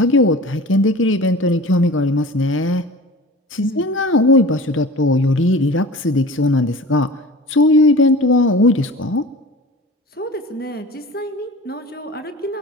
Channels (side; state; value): both; normal; correlation 0.38